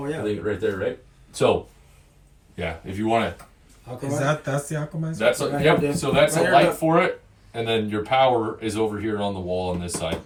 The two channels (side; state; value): both; identical; correlation 1.00